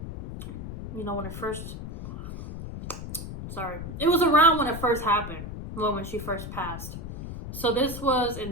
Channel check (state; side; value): noise; left; rumble, 9 dB below the sound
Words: You know, when it first... Sorry. It was around when it first happened. Well, when she first passed. So this was